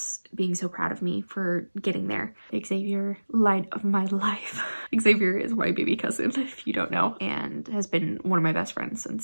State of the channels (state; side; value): inverted; both; correlation -1.00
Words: being so proud of me for getting there. Xavier, light of my life. Xavier is my baby cousin, if you don't know, and has been one of my best friends